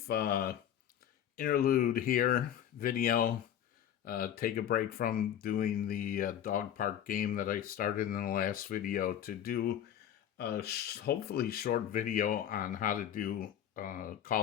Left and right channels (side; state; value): right; quieter; 10.2 dB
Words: interlude here, video, take a break from doing the dog park game that I started in the last video to do a hopefully short video on how to do